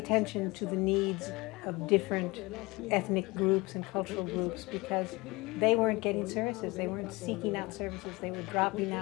to the needs of different ethnic groups and cultural groups because they weren't getting services, they weren't seeking out services, they were dropping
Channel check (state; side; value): quieter; right; 23.4 dB